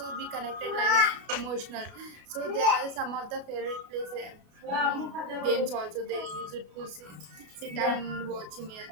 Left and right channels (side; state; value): left; late; 33 ms